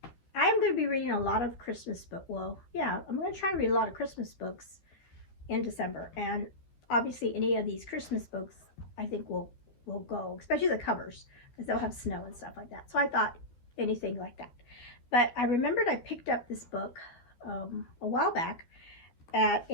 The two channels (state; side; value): late; right; 12 ms